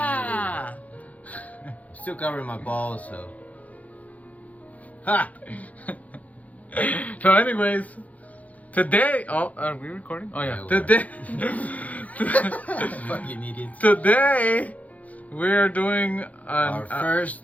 Still covering my balls, so. Ha! So anyways, today, are we recording? Oh yeah, Yeah, today, Fucking idiots. today we are doing Our first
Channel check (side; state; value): right; late; 0.072 ms